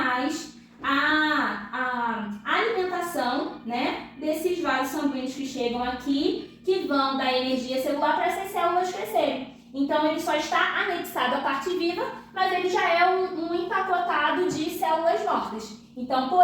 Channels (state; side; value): identical; both; correlation 1.00